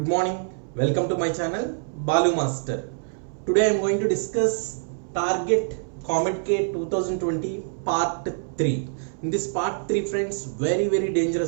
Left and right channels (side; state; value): left; silent; 62 dB below the other